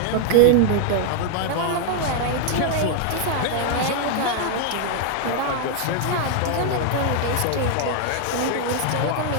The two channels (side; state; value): both; different; correlation 0.00